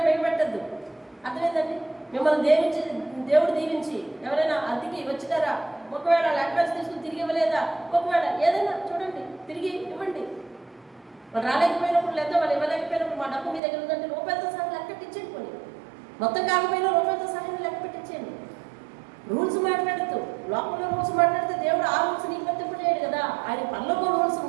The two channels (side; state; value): left; drops out; at 13.6 s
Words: బిగపెట్టద్దు. అర్థమైందండి? మిమ్మల్ని దేవుడు దీవించి ఎవరైనా అద్దెకి వచ్చినారా, ఒకవేళ లెక్కలు తీసుకుని తిరిగి ఇవ్వలేదా, ఒకవేళ ఏదైనా చూడండి తిరిగి ఇవ్వండి. వాళ్ళు రాలేకపోయినప్పుడు, లేదా వాళ్ళు ఇవ్వలేకపోయినప్పుడు మా డబ్బు మీ దగ్గర ఉందంటే రూపాయలతో సహా లెక్క పెట్టించండి. పోనీ మొత్తం కాకపోయినా రూపాయలతో సహా లెక్క పెట్టించండి. రూల్స్ మాట్లాడుతూ లోపల రూల్స్ మాట్లాడితే దేవుడు ఆ రూల్స్ నీకు వర్తింపజేయడు కదా. ఆయన పనులకు రూల్స్